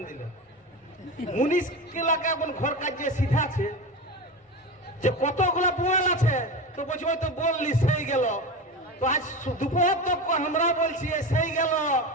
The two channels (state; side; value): normal; both; correlation 0.24